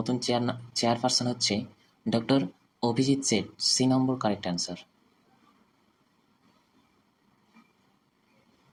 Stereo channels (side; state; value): both; identical; correlation 1.00